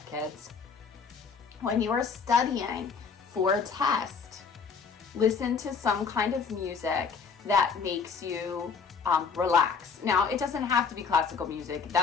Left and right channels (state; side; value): quieter; right; 5.6 dB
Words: kids. When you are studying for a test, listen to some kind of music that makes you relax. Now, it doesn't have to be classical music.